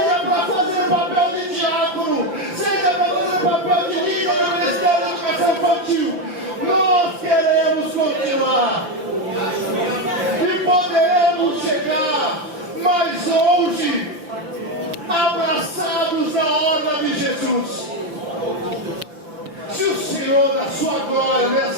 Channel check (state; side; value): late; left; 5.4 ms